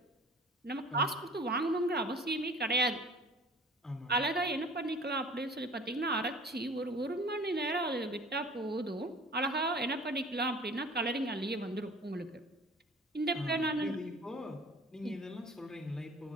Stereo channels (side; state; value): both; normal; correlation 0.46